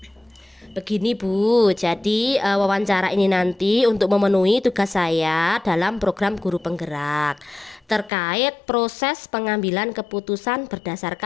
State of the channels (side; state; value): right; drops out; at 8.1 s